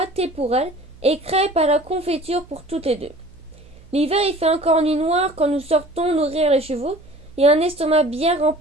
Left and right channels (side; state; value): right; noise; hum, 24 dB below the sound